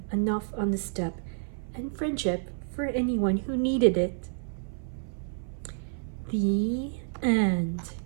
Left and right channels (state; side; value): silent; left; 56 dB below the other